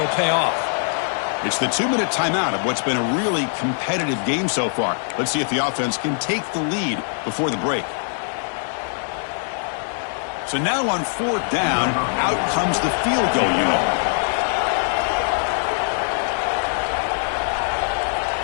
pay off. It's the 2-minute timeout of what's been a really competitive game so far. Let's see if the offense can take the lead before the break. So now on 4th down, out comes the field goal unit.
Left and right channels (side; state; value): right; silent; digital silence